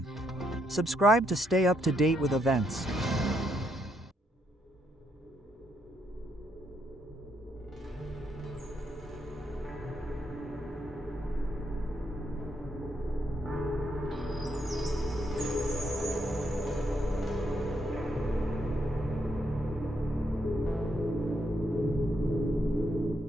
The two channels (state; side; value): normal; both; correlation 0.76